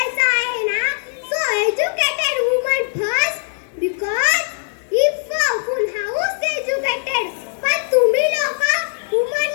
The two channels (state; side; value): silent; right; digital silence